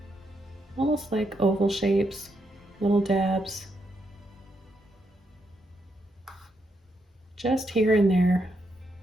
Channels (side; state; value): both; normal; correlation 0.80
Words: almost like oval shapes, little dabs, just here and there.